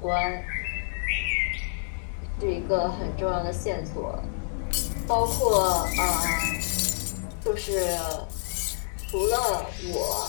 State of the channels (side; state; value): right; silent; digital silence